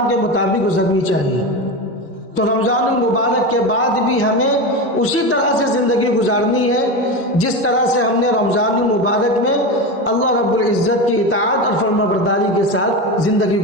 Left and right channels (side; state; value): both; normal; correlation 0.20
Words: کے مطابق گزرنی چاہیے۔ تو رمضان المبارک کے بعد بھی ہمیں اسی طرح سے زندگی گزارنی ہے جس طرح سے ہم نے رمضان المبارک میں اللہ رب العزت کی اطاعت اور فرمانبرداری کے ساتھ زندگی